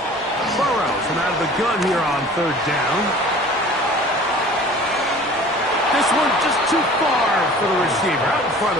Burrow from out of the gun here on 3rd down. This one just too far for the receiver out in front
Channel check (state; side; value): normal; both; correlation 0.45